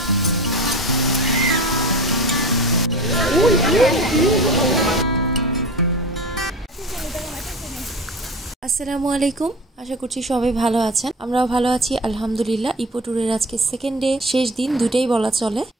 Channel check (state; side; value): normal; both; correlation 0.34